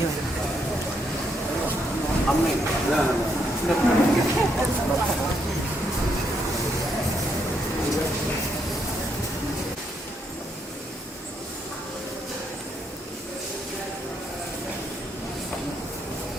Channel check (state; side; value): normal; both; correlation 0.76